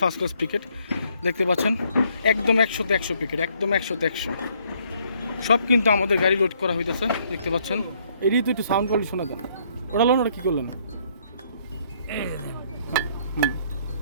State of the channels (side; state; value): both; inverted; correlation -0.67